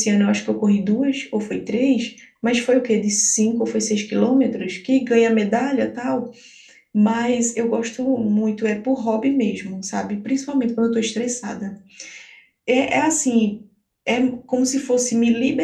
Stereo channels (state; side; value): identical; both; correlation 1.00